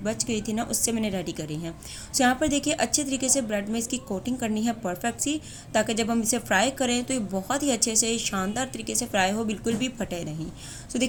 बच गई थी ना, उससे मैंने रेडी करी हैं। यहाँ पर देखिए अच्छे तरीके से ब्रेड में इसकी कोटिंग करनी है परफेक्ट सी, ताकि जब हम इसे फ्राई करें तो ये बहुत ही अच्छे से शानदार तरीके से फ्राई हो, बिल्कुल भी फटे नहीं।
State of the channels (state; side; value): identical; both; correlation 1.00